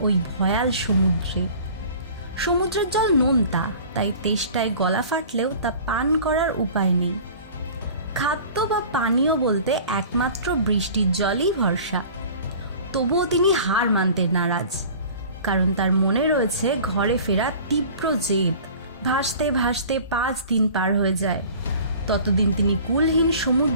ওই ভয়াল সমুদ্রে। সমুদ্রের জল নোনতা, তাই তেষ্টায় গলা ফাটলেও তা পান করার উপায় নেই। খাদ্য বা পানীয় বলতে একমাত্র বৃষ্টির জলই ভরসা। তবুও তিনি হার মানতে নারাজ, কারণ তার মনে রয়েছে ঘরে ফেরা তীব্র জেদ। ভাসতে ভাসতে 5 দিন পার হয়ে যায়। ততদিন তিনি কুলহীন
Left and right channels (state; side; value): inverted; both; correlation -0.44